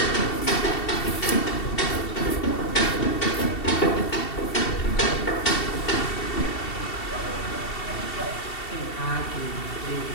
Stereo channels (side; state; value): right; late; 2.7 ms